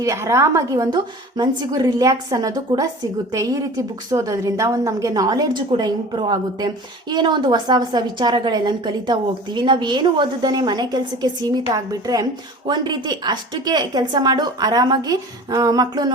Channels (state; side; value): normal; both; correlation 0.40